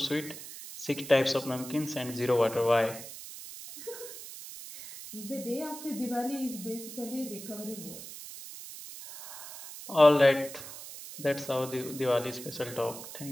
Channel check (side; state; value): right; noise; hiss, 12 dB below the sound